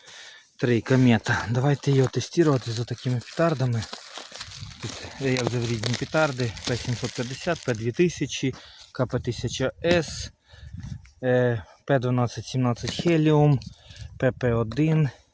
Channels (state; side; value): identical; both; correlation 1.00